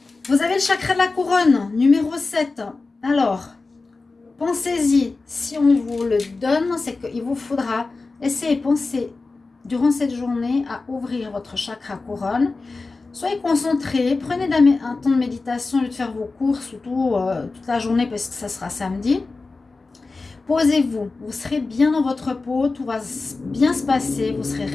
Vous avez le chakra de la couronne, numéro 7. Alors, pensez-y. Si on vous le donne, c'est qu'il vous faudra essayer de penser durant cette journée à ouvrir votre chakra couronne. Soyez concentrés, prenez un temps de méditation au lieu de faire vos courses toute la journée parce que ça sera samedi. Posez-vous, vous serez bien dans votre peau, tout va bien se passer, vous serez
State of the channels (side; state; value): right; quieter; 3.8 dB